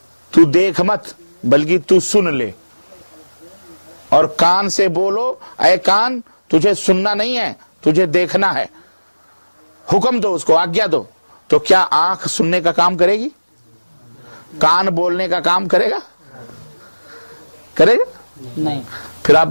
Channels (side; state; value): both; inverted; correlation -1.00